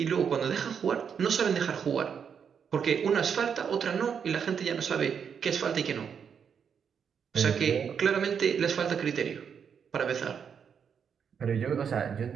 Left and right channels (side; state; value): left; quieter; 7.1 dB